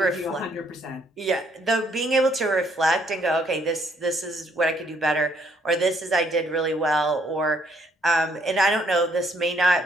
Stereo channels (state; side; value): normal; both; correlation 0.69